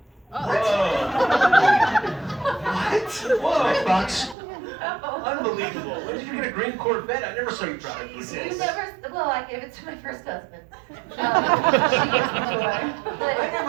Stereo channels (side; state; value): left; drops out; at 4.4 s